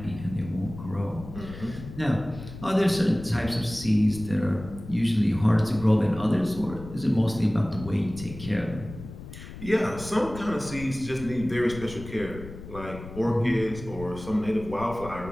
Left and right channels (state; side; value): noise; left; rumble, 13 dB below the sound